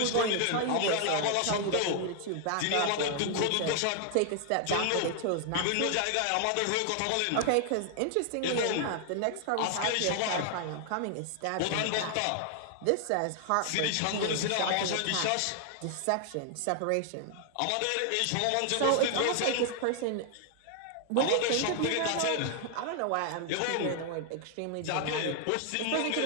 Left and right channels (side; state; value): both; different; correlation 0.00